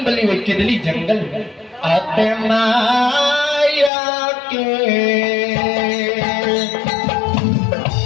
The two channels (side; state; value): right; drops out; at 3.9 s